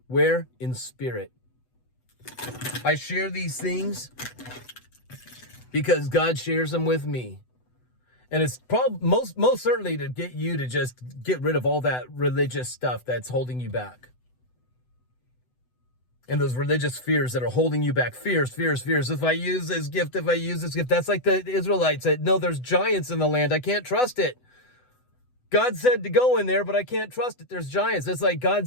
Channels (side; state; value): right; late; 8.0 ms